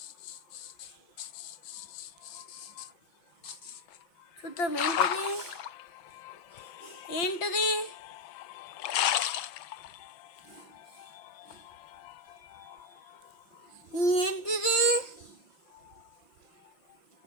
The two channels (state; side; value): late; right; 5.8 ms